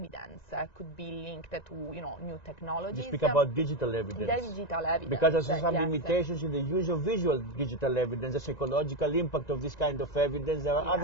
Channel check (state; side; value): late; right; 1.9 ms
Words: could be linked to new technologies. You speak about digital evidence. Digital evidence. Because there's some limitations in the use of visual digital evidence, the psychological impact of this kind of evidence. There are